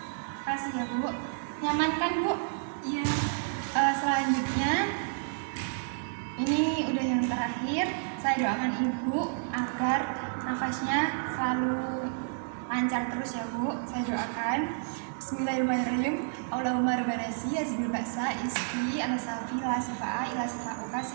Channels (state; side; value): silent; left; digital silence